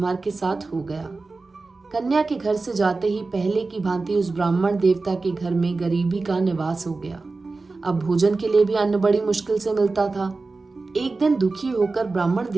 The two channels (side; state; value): left; quieter; 3.7 dB